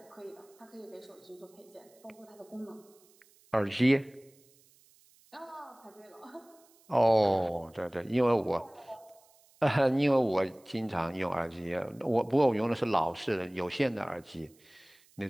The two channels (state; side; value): noise; right; hiss, 30 dB below the sound